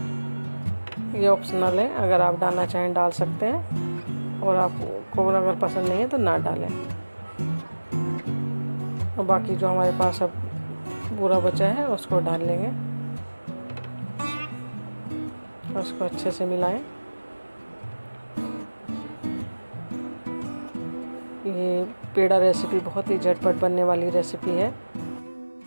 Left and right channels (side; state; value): both; inverted; correlation -1.00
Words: ये ऑप्शनल है, अगर आप डालना चाहें डाल सकते हैं, और आपको अगर पसंद नहीं है तो ना डालें। और बाकी जो हमारे पास अब पूरा बचा है उसको डाल लेंगे, उसको अच्छे से मिलाएं। ये पेड़ा रेसिपी बहुत ही झटपट बनने वाली रेसिपी है,